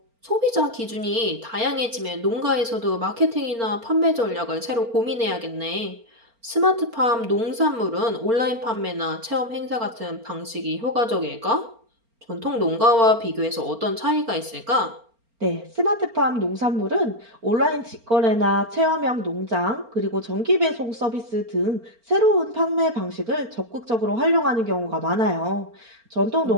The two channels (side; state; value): left; late; 4.4 ms